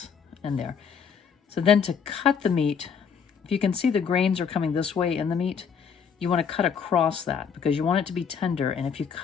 in there. So then to cut the meat, if you can see the grains are coming this way in the meat, you want to cut across that because you want it to be tender. And if you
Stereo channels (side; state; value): right; quieter; 6.7 dB